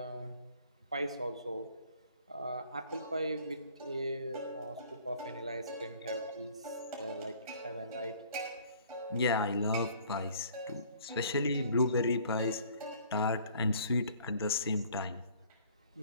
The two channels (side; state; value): both; inverted; correlation -0.55